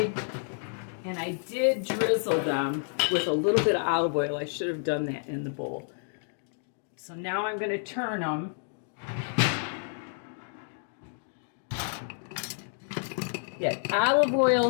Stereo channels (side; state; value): right; silent; digital silence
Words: and I did drizzle them with a little bit of olive oil. I should have done that in the bowl. So now I'm going to turn them. Yeah, olive